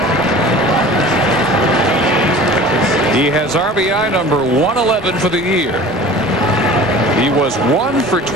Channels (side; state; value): both; normal; correlation 0.41